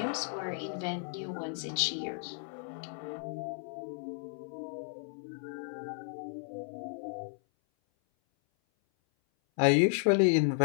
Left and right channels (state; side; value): silent; right; 55 dB below the other